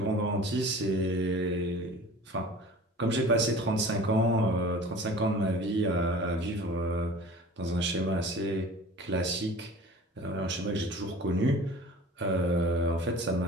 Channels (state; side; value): normal; both; correlation 0.42